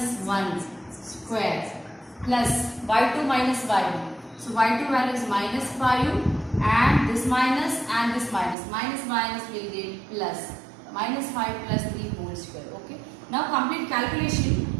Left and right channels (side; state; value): left; drops out; at 8.6 s